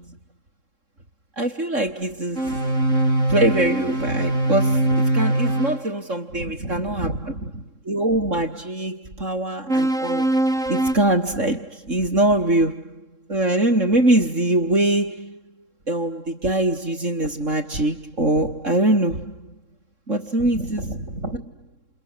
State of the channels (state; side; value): late; left; 3.7 ms